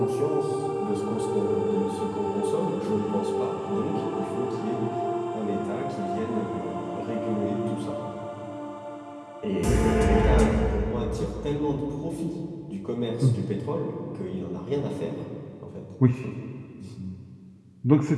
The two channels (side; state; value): both; identical; correlation 1.00